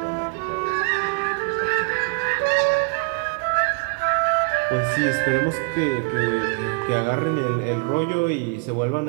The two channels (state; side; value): quieter; left; 34.8 dB